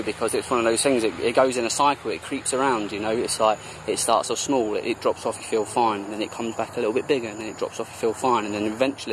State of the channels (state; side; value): identical; both; correlation 1.00